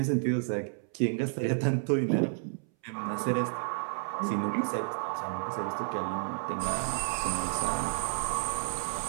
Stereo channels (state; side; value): silent; left; 57 dB below the other